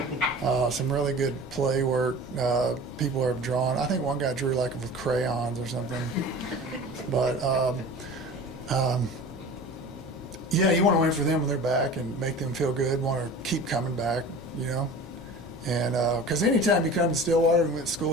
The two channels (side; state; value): both; normal; correlation 0.38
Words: Some really good play work. People have drawn. I think one guy drew like with crayons or something. But yeah, you want to win for them when they're back and make them feel good. Want to keep coming back, you know. And because anytime you come to Stillwater and went to